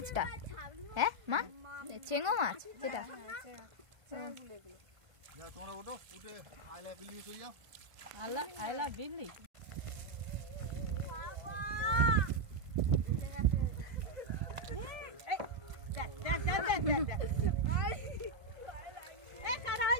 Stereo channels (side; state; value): left; late; 1.5 ms